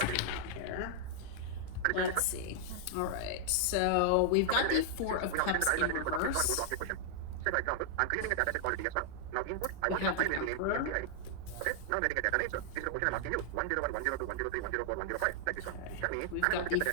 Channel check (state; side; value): different; both; correlation -0.01